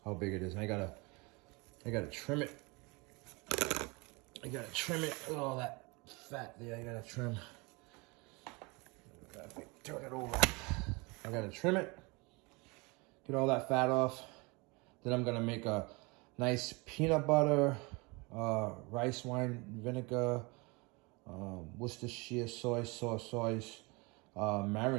how big it is. And I gotta trim it. I gotta trim it. Look at all that fat there. I gotta trim. Turn it over. I gotta trim it. Get all that fat off. Then I'm gonna make a nice peanut butter, rice wine vinegar, Worcestershire soy sauce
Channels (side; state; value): left; quieter; 27.2 dB